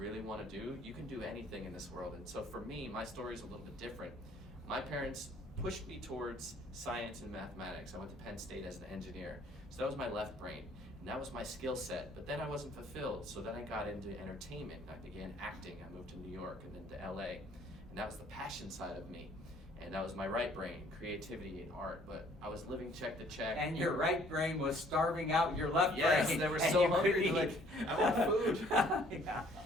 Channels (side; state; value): both; normal; correlation 0.60